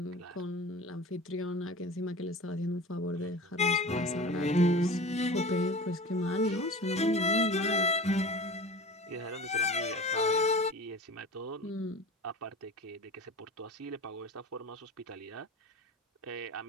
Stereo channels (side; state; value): both; normal; correlation 0.35